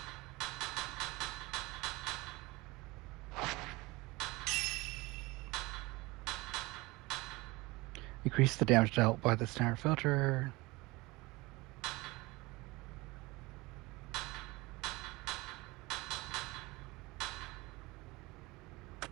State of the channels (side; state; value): left; quieter; 22.5 dB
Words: Increase the damage dealt by the standard filter.